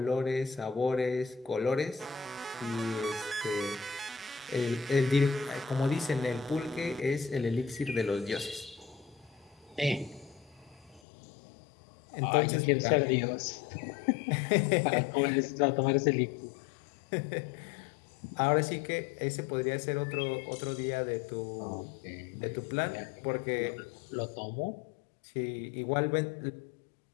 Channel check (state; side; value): drops out; right; at 11.0 s